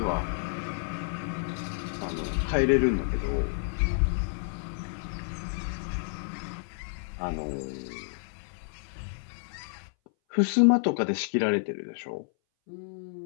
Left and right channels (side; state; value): right; silent; 58 dB below the other